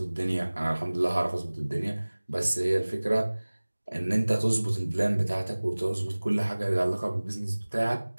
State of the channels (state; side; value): inverted; both; correlation -1.00